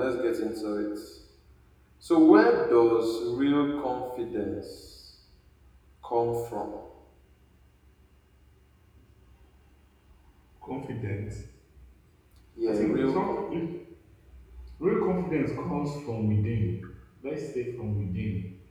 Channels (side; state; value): both; identical; correlation 1.00